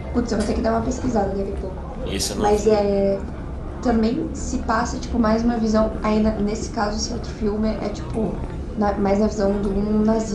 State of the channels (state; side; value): identical; both; correlation 1.00